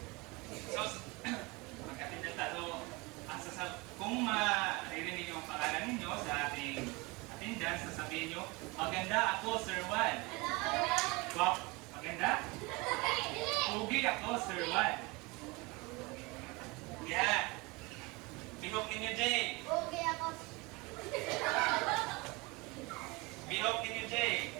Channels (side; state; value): left; quieter; 25.3 dB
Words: So, magkatinda tayo. Kung maririnig yung pangalan ninyo sa ating attendance, sasabihin nyo, maganda ako, Sir Juan. Wow, maganda? Pugi ako, Sir Juan. Yan. Bihok ninyo, Jay. Okay ako. Bihok ninyo, Jay.